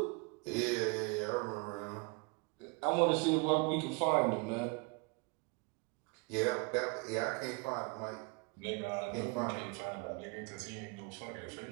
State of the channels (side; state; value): left; quieter; 30.7 dB